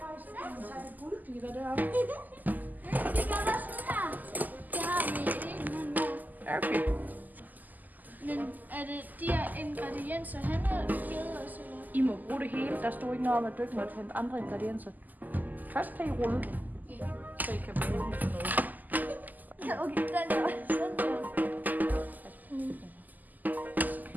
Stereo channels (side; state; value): left; late; 0.083 ms